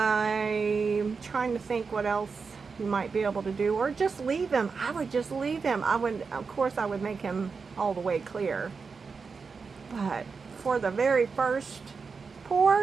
trying to think what else you might be able to do, or just leave him. I would just leave him. Of course I would make him all the way clear, but for the very first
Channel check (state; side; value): quieter; left; 5.1 dB